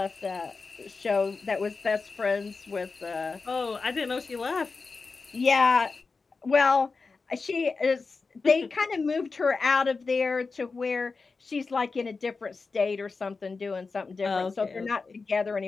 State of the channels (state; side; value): quieter; right; 4.3 dB